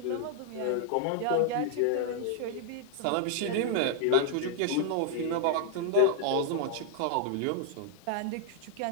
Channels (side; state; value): both; different; correlation -0.01